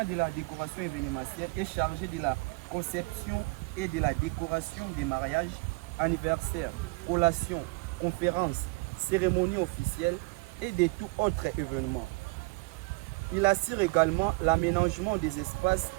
de la décoration événementielle est chargé de la conception et de la décoration des mariages, anniversaires, collations, conférences, cérémonies officielles et de tout autre événement. Il assure également l'aménagement des espaces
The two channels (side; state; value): left; quieter; 26.6 dB